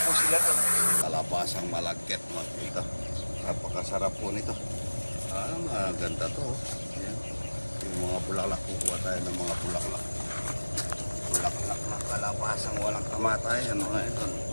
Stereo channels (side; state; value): both; inverted; correlation -1.00